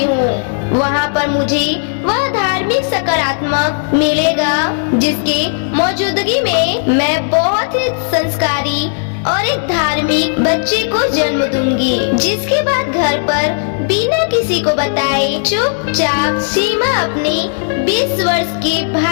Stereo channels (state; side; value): silent; right; digital silence